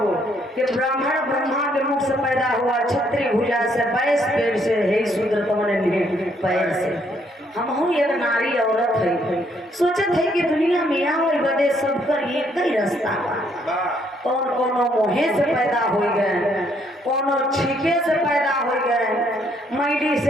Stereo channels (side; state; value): both; normal; correlation 0.69